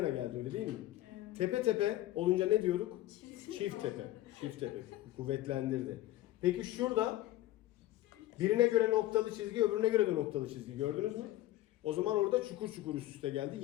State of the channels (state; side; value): quieter; right; 15.4 dB